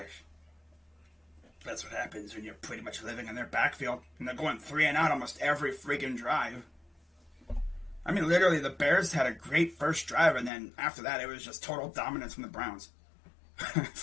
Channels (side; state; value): right; drops out; at 10.5 s